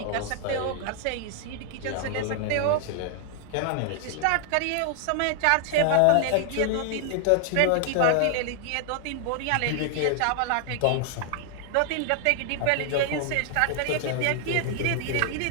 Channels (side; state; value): both; different; correlation 0.00